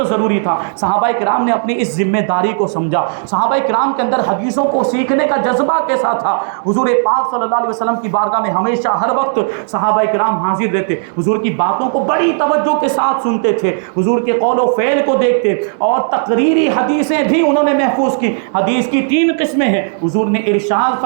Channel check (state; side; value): silent; left; digital silence